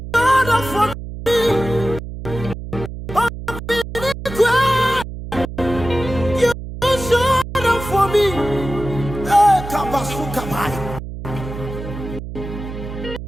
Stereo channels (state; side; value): noise; right; hum, 9 dB below the sound